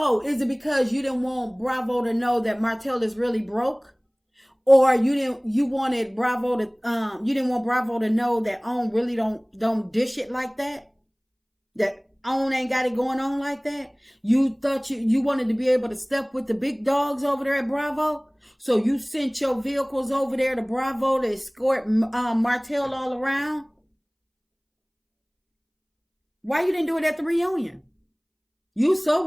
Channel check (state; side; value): identical; both; correlation 1.00